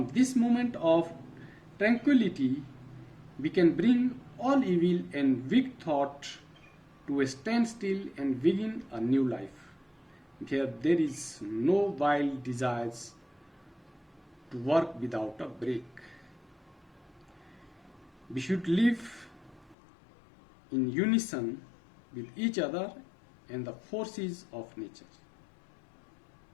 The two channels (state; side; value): drops out; right; at 19.8 s